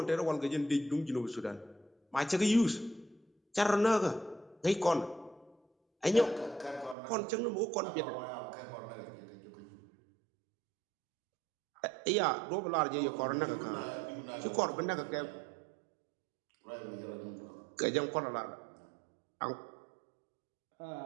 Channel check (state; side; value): drops out; left; at 7.0 s